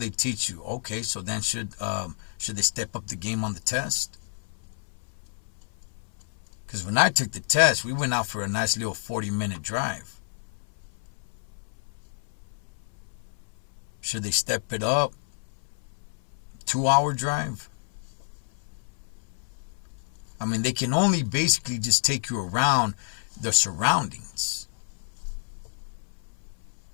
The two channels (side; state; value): right; silent; 59 dB below the other